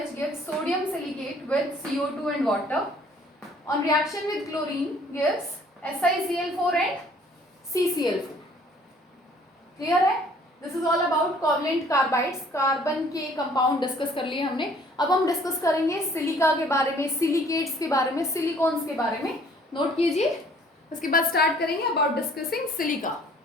gives sodium silicate with CO2 and water. On reaction with chlorine gives SiCl4 and CCl4। Clear है? This is all about covalent carbides. Carbon के कंपाउंड डिस्कस कर लिए हमने। अब हम डिस्कस करेंगे सिलिका के बारे में, सिलिकेट्स के बारे में, सिलिकॉन्स के बारे में। नोट कीजिए, उसके बाद स्टार्ट करेंगे about discussing silica.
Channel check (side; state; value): both; normal; correlation 0.57